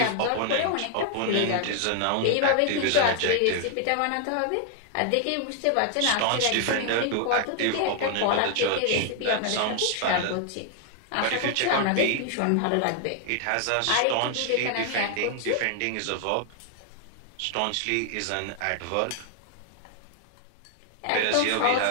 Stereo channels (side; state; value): both; different; correlation 0.00